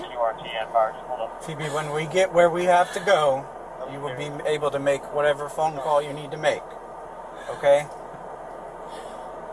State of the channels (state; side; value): identical; both; correlation 1.00